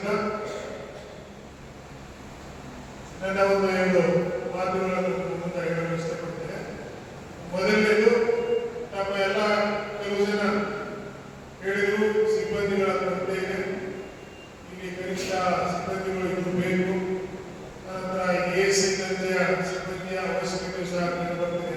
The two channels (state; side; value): identical; both; correlation 1.00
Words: ನನ್ನ ಒಂದು 2 ಮಾತುಗಳನ್ನು ಮುಂದೆ ಹೇಳಲು ಇಷ್ಟಪಡ್ತೇನೆ. ಮೊದಲನೇದು, ನಮ್ಮ ಎಲ್ಲ ಕೆಲವು ಜನ ಹೇಳಿದರು ಸಿಬ್ಬಂದಿಗಳ ಕೊರತೆ ಇದೆ, ಇಲ್ಲಿ ಕನಿಷ್ಠ ಸಿಬ್ಬಂದಿಗಳು ಇದು ಬೇಕು, ನಂತರ ASI ದರ್ಜೆಯ ಸಿಬ್ಬಂದಿಯ ಅವಶ್ಯಕತೆ ಸಹ ಬರ್ತದೆ